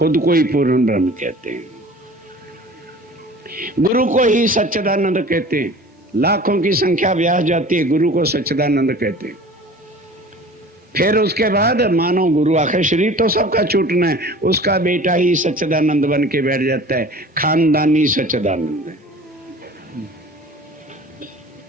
को ही पूर्ण ब्रह्म कहते हैं, गुरु को ही सच्चिदानंद कहते हैं। लाखों की संख्या ब्याह जाती है, गुरु को सच्चिदानंद कहते हैं। फिर उसके बाद मानो गुरु आखिर शरीर तो सबका छूटना है, उसका बेटा ही सच्चिदानंद बन के बैठ जाता है, खानदानी सच्चिदानंद।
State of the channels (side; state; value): both; normal; correlation 0.43